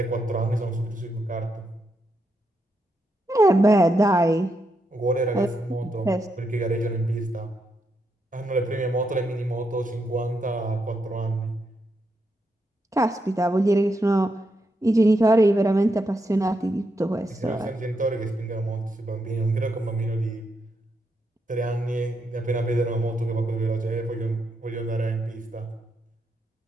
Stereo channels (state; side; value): normal; both; correlation 0.82